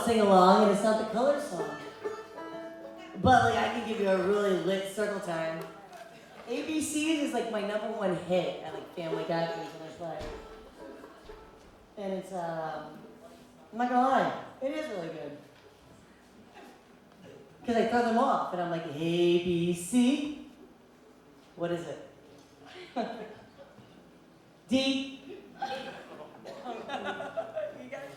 sing-along, and it's not the color song. But like, I can give you a really lit circle time. ABCs is like my #1 hit at like family gatherings when I play. And it's, I'm not gonna lie, it is really good. Because I throw them off, and I'm like, ABC. What is it? D. You got it?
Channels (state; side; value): identical; both; correlation 1.00